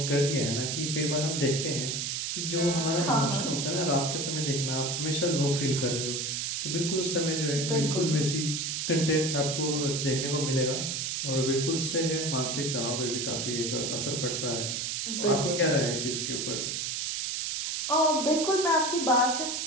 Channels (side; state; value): right; noise; hiss, 2 dB below the sound